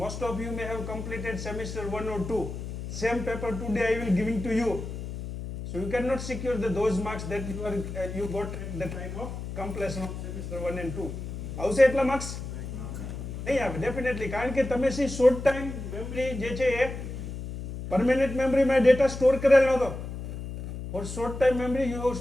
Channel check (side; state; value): left; noise; hum, 8 dB below the sound